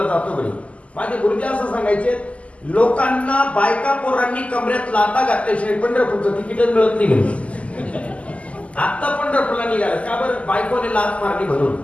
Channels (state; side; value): late; right; 0.065 ms